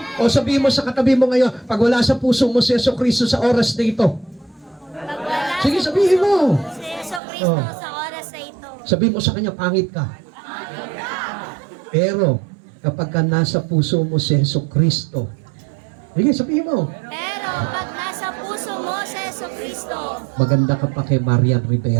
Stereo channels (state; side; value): drops out; left; at 7.2 s